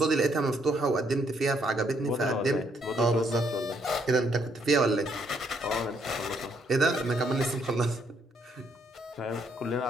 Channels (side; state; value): both; normal; correlation 0.71